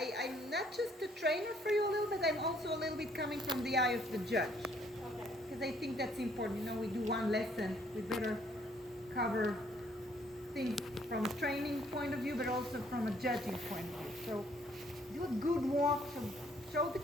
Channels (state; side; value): normal; both; correlation 0.65